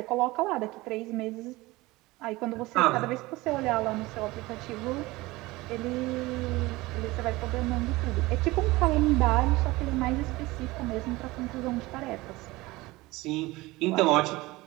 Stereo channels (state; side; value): quieter; left; 20.6 dB